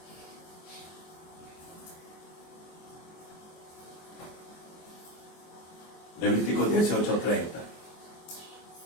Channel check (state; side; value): late; right; 24 ms